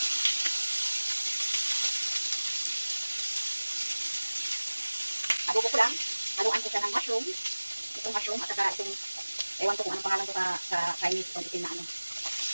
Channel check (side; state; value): both; inverted; correlation -1.00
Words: Adobo ko lang. Haluan ko siya ng mushroom. Itong mushroom at saka itong, ewan ko kung anong pangalan ko sa Chinese, itong itim na ano.